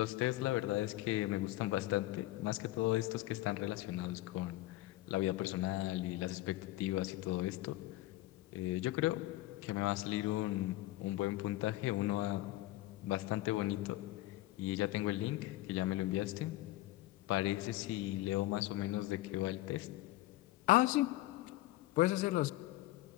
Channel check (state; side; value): quieter; right; 17.0 dB